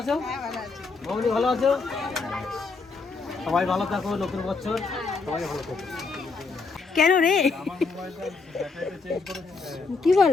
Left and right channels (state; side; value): quieter; right; 4.3 dB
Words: আছো মামনি? ভালো আছো? সবাই ভালো থাকো, নতুন বছর সবাই ভালো থাকো। কেন রে কি